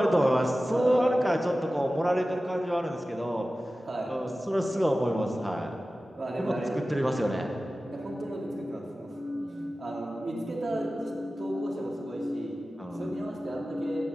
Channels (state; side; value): normal; both; correlation 0.95